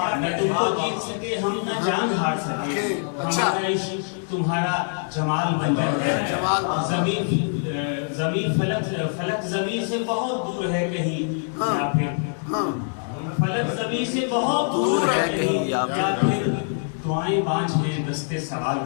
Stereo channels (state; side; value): silent; right; digital silence